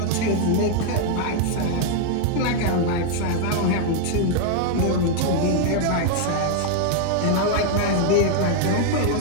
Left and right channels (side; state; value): both; different; correlation 0.00